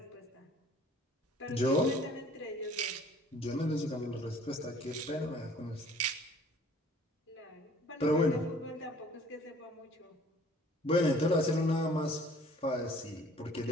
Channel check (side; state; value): both; normal; correlation 0.53